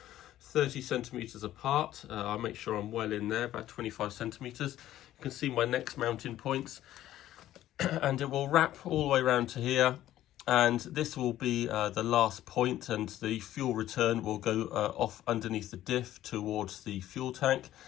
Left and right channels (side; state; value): right; quieter; 13.4 dB